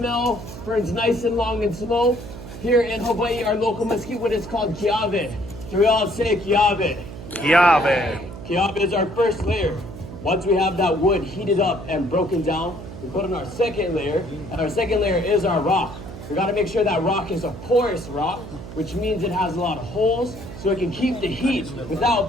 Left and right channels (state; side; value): noise; right; hum, 12 dB below the sound